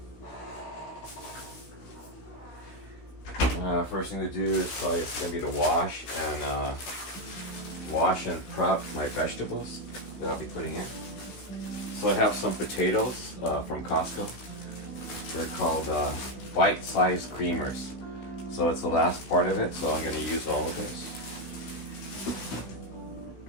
now. First thing to do is probably going to be to wash and prep my vegetables that I'll be putting in. So I have some potatoes from Costco. They're called bite-sized creamers. So it's the last part of it, so I'm going to use all of this.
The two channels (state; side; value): late; right; 16 ms